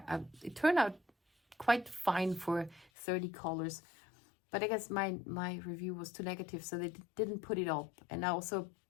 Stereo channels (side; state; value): right; drops out; at 2.9 s